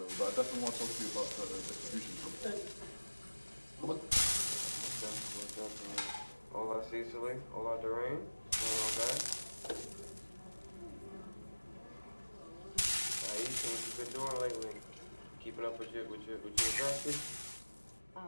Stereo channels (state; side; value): inverted; both; correlation -1.00